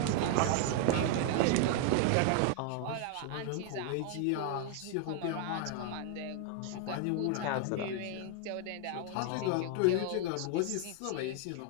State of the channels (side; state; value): both; different; correlation 0.00